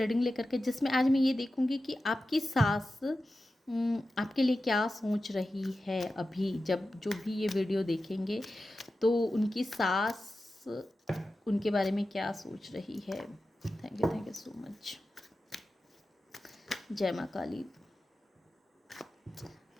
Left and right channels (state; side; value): normal; both; correlation 0.93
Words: लेकर के, जिसमें आज मैं ये देखूँगी कि आपकी सास आपके लिए क्या सोच रही है। अभी जब जो भी ये वीडियो देखेंगे तो उनकी सास उनके बारे में क्या सोच रही है। Thank you so much. जय माँ काली,